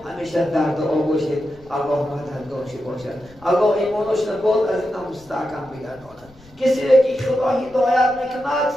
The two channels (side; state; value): left; noise; rumble, 25 dB below the sound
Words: همیشه در دعا باشید الله مددگارش باشد الله ایمانش نباد از این مستحکم بگرداند کسی را که خدا هدایت میکند